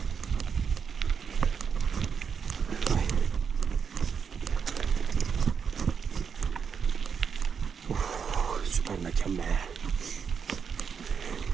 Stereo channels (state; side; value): quieter; left; 6.6 dB